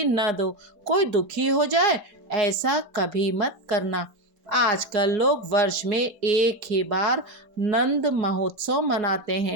न दो। कोई दुखी हो जाए ऐसा कभी मत करना। आजकल लोग वर्ष में एक ही बार नंद महोत्सव मनाते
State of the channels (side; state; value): left; late; 4.8 ms